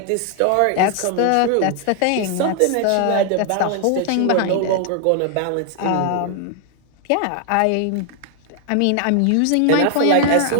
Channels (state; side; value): different; both; correlation 0.00